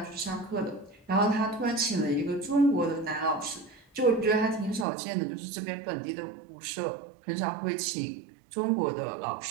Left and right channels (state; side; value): drops out; left; at 4.9 s